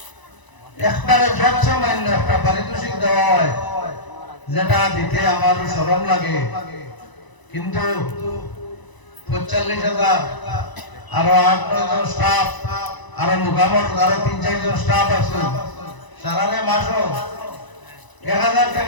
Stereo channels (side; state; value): right; late; 1.0 ms